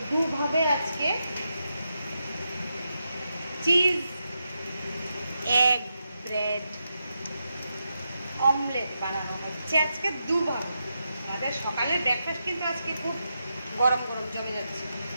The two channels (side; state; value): both; inverted; correlation -0.86